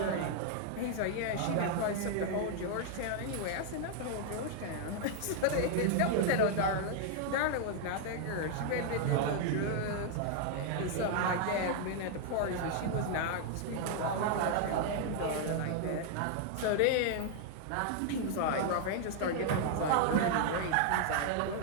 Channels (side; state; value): both; different; correlation 0.00